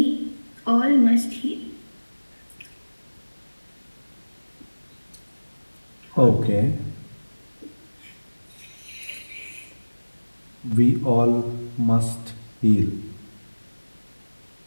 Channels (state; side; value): inverted; both; correlation -1.00